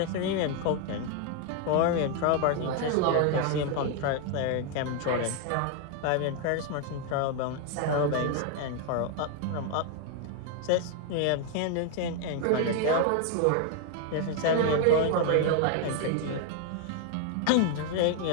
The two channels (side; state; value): both; different; correlation 0.00